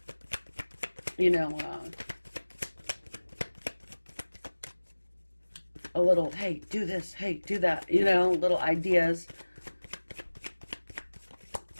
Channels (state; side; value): inverted; both; correlation -1.00